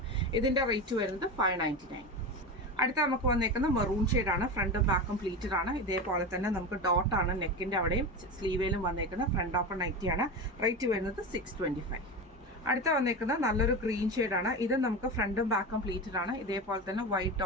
ഇതിൻ്റെ റേറ്റ് വരുന്നത് 599. അടുത്ത നമുക്ക് വന്നേക്കുന്ന മെറൂൺ ഷെയ്ഡാണ്. ഫ്രണ്ടും ബാക്കും പ്ലീറ്റഡ് ആണ്. ഇതേപോലെ തന്നെ നമുക്ക് ഡോട്ടാണ് നെക്കിൻ്റെ അവിടെയും സ്ലീവേലും വന്നേക്കുന്നത്. Front open നൈറ്റിയാണ്. റേറ്റ് വരുന്നത് 625. അടുത്ത വന്നേക്കുന്നത് നല്ലൊരു ഗ്രീൻ ഷെയ്ഡാണ്. ഇത് നമുക്ക് ഫ്രണ്ടും ബാക്കും പ്ലീറ്റഡ് ആണ്. ഇതേപോലെ തന്നെ വൈറ്റ്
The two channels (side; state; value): both; normal; correlation 0.23